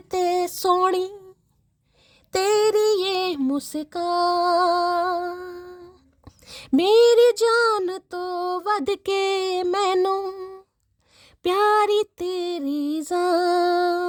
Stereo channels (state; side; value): identical; both; correlation 1.00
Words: ते सोनी तेरी ये मुस्कान, मेरी जान तो वध के मैनू प्यारी तेरी